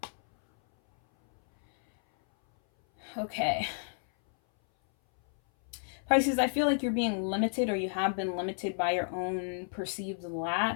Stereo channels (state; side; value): silent; right; 57 dB below the other